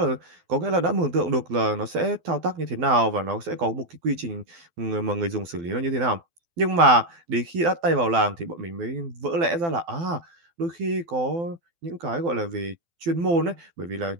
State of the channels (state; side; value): late; left; 12 ms